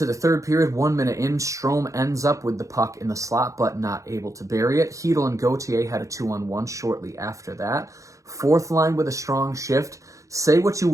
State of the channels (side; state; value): left; late; 0.15 ms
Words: the third period, 1 minute in. Strome ends up with the puck in the slot, but not able to bury it. Hedl and Gauthier had a 2-on-1 shortly after that. Fourth line with a strong shift. Say what you